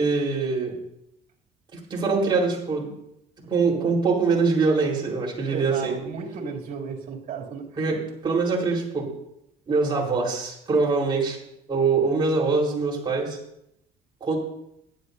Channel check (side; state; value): left; quieter; 3.9 dB